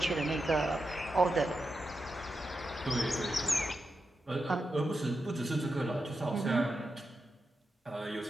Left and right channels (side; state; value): both; normal; correlation 0.88